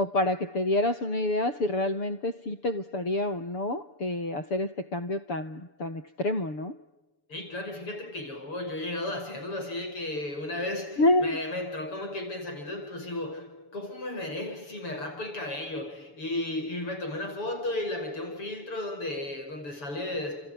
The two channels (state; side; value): late; right; 6.9 ms